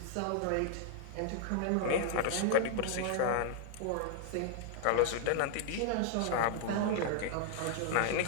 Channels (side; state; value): both; different; correlation 0.00